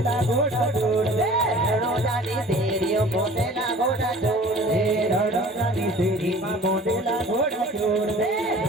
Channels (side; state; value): both; normal; correlation 0.46